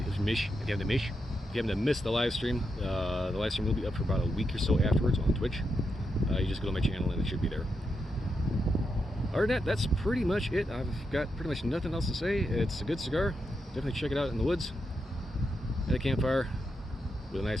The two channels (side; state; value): both; normal; correlation 0.84